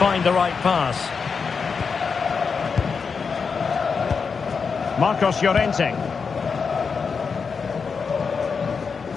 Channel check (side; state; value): right; quieter; 5.5 dB